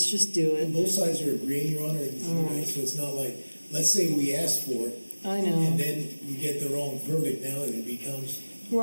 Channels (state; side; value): inverted; both; correlation -1.00